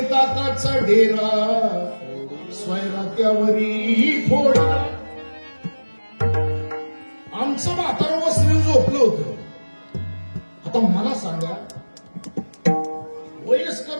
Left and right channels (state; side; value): inverted; both; correlation -1.00